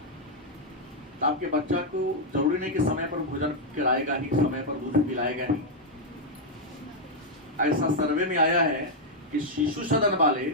तो आपके बच्चा को जरूरी नहीं कि समय पर भोजन कराएगा ही, समय पर दूध पिलाएगा ही। ऐसा सर्वे में आया है कि शिशु सदन वाले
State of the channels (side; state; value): both; normal; correlation -0.02